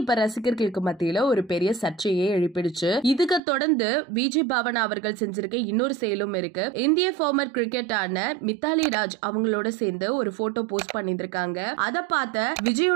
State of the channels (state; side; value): drops out; left; at 3.4 s